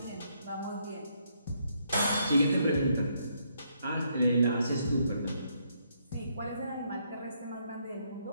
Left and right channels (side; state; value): both; inverted; correlation -0.74